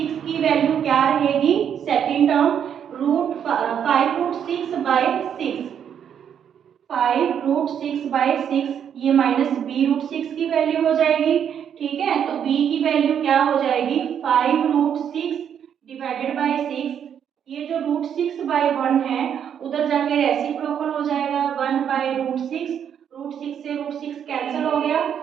की वैल्यू क्या रहेगी सेकेंड टर्म √5√6/6, 5√6/6, ये माइनस b√6 की वैल्यू हो जाएगी, ठीक है। तो b की वैल्यू क्या हो जाएगी 5√6 डिवाइडेड बाई 6, ये जो √6/1 है उधर जाके रेसिप्रोकल हो जाएगा 1/√6, √6 से √6 कैंसिल हो गया,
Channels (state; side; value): quieter; left; 8.6 dB